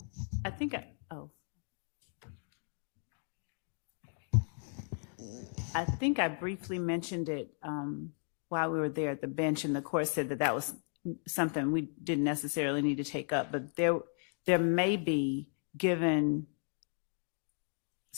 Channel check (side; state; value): right; silent; 54 dB below the other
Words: I think I think I briefly mentioned it while we were there at the bench, and the court said that that was something we didn't necessarily need to take up, but there may be, given